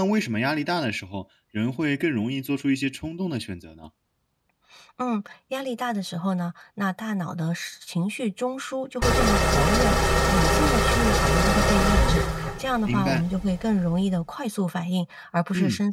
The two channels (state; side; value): identical; both; correlation 1.00